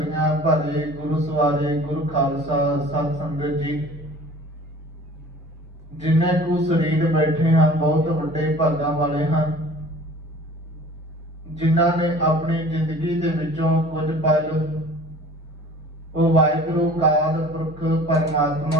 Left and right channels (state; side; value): normal; both; correlation 0.46